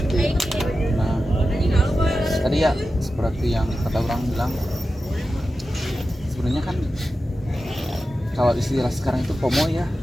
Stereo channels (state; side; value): normal; both; correlation 0.92